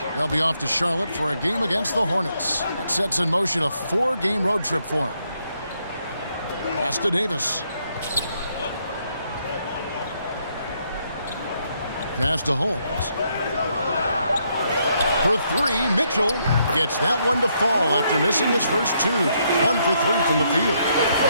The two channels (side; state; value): both; inverted; correlation -0.75